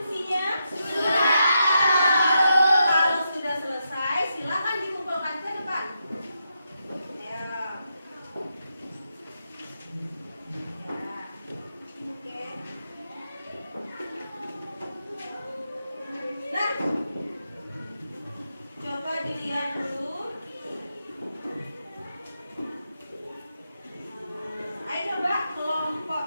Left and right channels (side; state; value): both; inverted; correlation -0.84